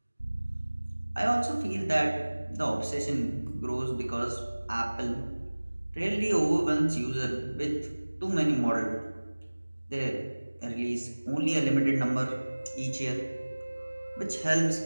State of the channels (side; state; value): both; inverted; correlation -1.00